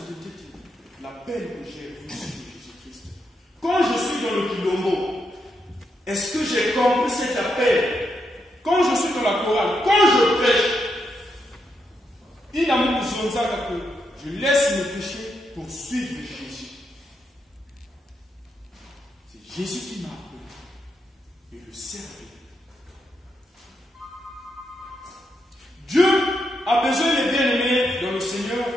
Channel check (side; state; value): both; normal; correlation 0.82